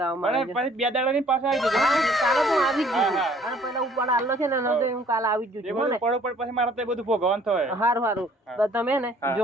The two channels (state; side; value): normal; both; correlation 0.57